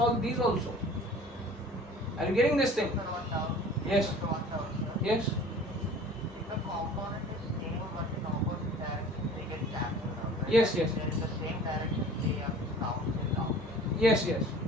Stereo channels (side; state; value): both; normal; correlation 0.45